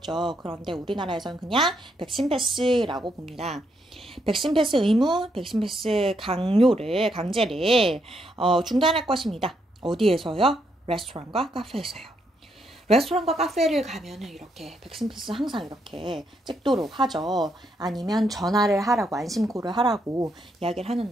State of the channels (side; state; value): both; normal; correlation 0.77